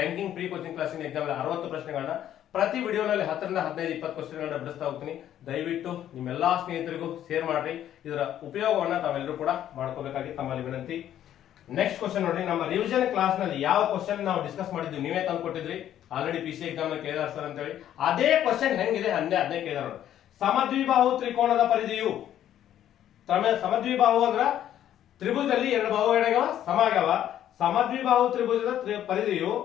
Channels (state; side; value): quieter; right; 11.2 dB